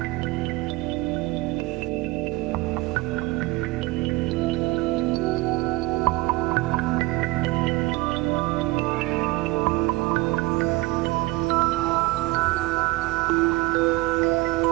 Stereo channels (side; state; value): left; quieter; 21.0 dB